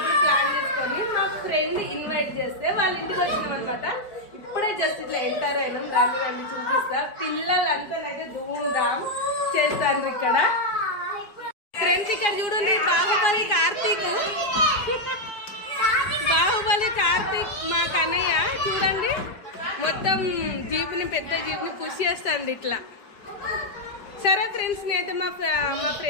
ప్లాన్ చేసుకొని మా ఫ్రెండ్ ఇన్వైట్ చేస్తే వాళ్ళ ఇంటికి వచ్చినాం అనమాట. ఇప్పుడే జస్ట్ ఇట్లా ఎంటర్ అయినాం. రండి రండి చూపిస్తా. పిల్లలంతానైతే ధూమ్ధాం చేస్తారు ఇక్కడ. ఫ్రెండ్స్ ఇక్కడ చూడండి, బాహుబలి కార్తీక్ మా కన్నయ్య చూడండి మొత్తం జీపుని, పెద్ద జీపుని పుష్ చేస్తుంది ఇట్లా. సరే ఫ్రెండ్స్, నేనైతే మా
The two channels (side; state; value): right; late; 4.9 ms